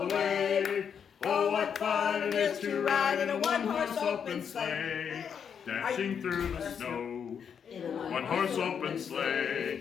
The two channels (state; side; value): quieter; right; 7.4 dB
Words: the way. Oh, what fun it is to ride in a one-horse open sleigh. Dashing through the snow, one-horse open